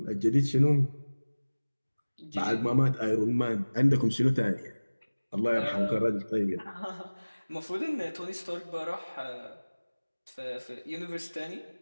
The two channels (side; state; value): both; inverted; correlation -1.00